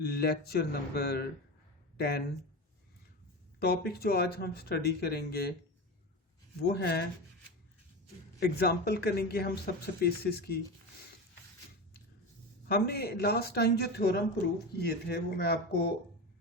number 10। Topic जो आज हम स्टडी करेंगे वो है एग्जाम्पल करेंगे हम सब स्पेसेस की। हमने लास्ट टाइम जो थ्योरम प्रूव किए थे वो मैं आपको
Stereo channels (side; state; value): both; normal; correlation 0.24